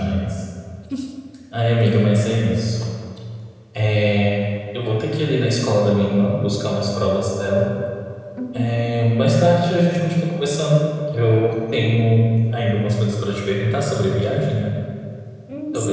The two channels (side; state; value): both; identical; correlation 1.00